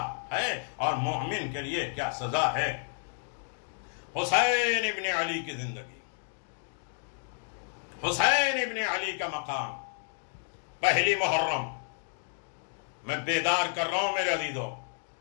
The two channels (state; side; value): silent; right; digital silence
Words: ہے اور مومن کے لیے کیا سزا ہے. حسین ابن علی کی زندگی، حسین ابن علی کا مقام. پہلی محرم میں بیدار کر رہا ہوں میرے عزیزو.